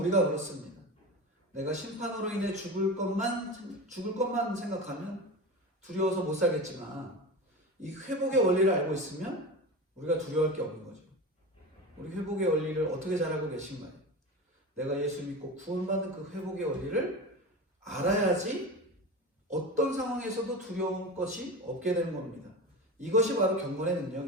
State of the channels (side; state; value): both; normal; correlation 0.27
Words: 그렇습니다. 내가 심판으로 인해 죽을 것만 생각하면 두려워서 못 살겠지만 이 회복의 원리를 알고 있으면 우리가 두려워할 게 없는 거죠. 우리 회복의 원리를 어떻게 잘 알고 계신가요? 내가 예수 믿고 구원받는 그 회복의 원리를 알아야지 어떤 상황에서도 두려운 것이 없게 되는 겁니다. 이것이 바로 경건의